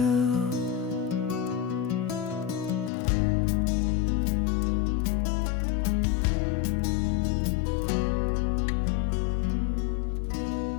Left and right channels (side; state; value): right; drops out; at 2.9 s